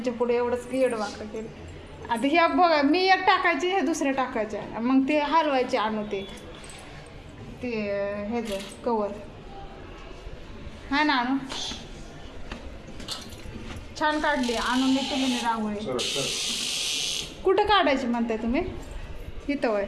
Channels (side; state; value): both; identical; correlation 1.00